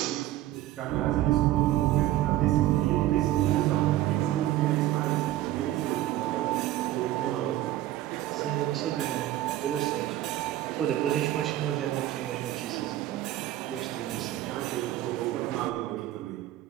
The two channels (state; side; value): quieter; left; 14.3 dB